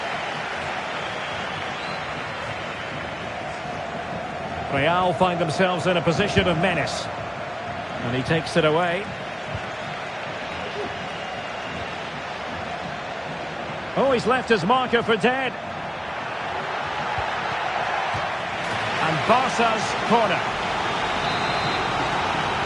Real find themselves in a position of menace. And he takes it away. Oh, he's left his marker for dead. And Barca's corner.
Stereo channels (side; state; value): both; identical; correlation 1.00